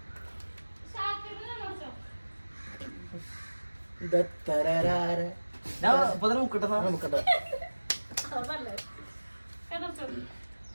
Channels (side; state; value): both; inverted; correlation -1.00